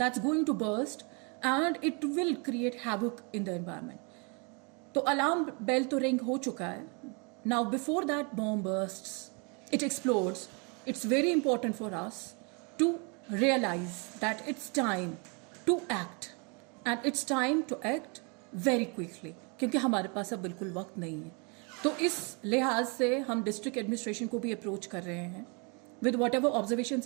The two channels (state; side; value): quieter; left; 33.5 dB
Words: going to burst and it will create havoc in the environment. तो alarm bell तो ring हो चुका है. Now before that bomb bursts, it explodes, it's very important for us to realize that it's time to act, and it's time to act very quickly, क्योंकि हमारे पास अब बिल्कुल वक्त नहीं है. तो इस लिहाज से हम डिस्ट्रिक्ट एडमिनिस्ट्रेशन को भी अप्रोच कर रहे हैं with whatever observations